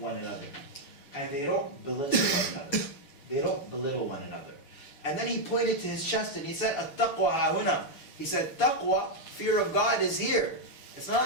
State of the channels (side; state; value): right; late; 6.8 ms